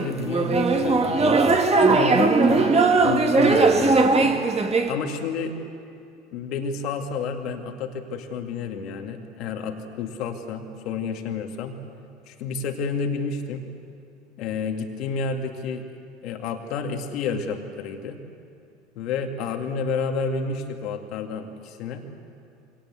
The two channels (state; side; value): normal; both; correlation 0.48